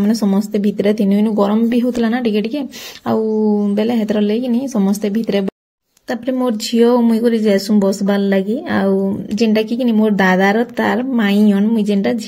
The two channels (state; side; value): identical; both; correlation 1.00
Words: समस्त भितरे तिनु इनु गरम भी होतला ना टिके टिके आ बेले हेतर लागि नि समस्त भितरे तापरे मोर झियो मुई करी जैसु बसबार लगी आउ जेनटा कि मोर दादार तार माई अन मुई जेनटा